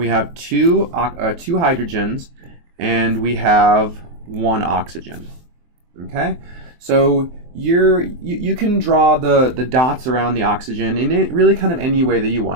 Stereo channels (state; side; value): late; left; 23 ms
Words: have two hydrogens, and we have 1 oxygen. Okay, so you can draw the dots around the oxygen in really kind of any way that you